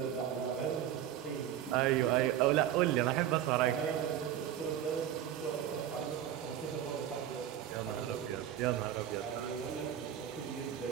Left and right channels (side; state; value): left; quieter; 10.7 dB